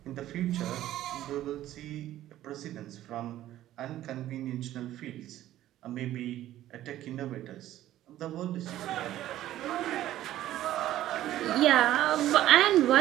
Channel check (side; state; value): left; quieter; 13.6 dB